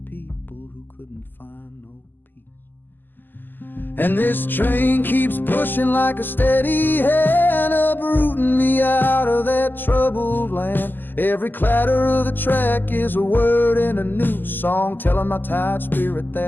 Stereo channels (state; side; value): late; right; 0.090 ms